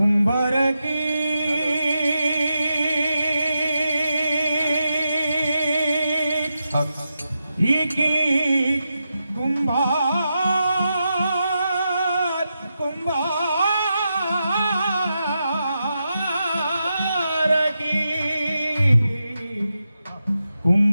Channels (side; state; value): both; inverted; correlation -0.87